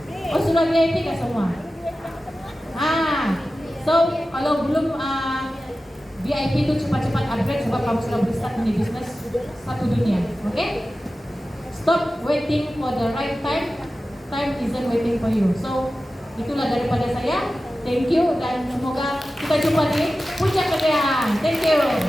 Oh, sudah VIP kah semua? So kalau belum VIP itu cepat-cepat upgrade sebab kamu sudah start di bisnis satu dunia. Oke? Stop waiting for the right time. Time isn't waiting for you. So itulah daripada saya. Thank you dan semoga kita jumpa di puncak kejayaan. Thank you.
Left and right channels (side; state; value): both; normal; correlation 0.94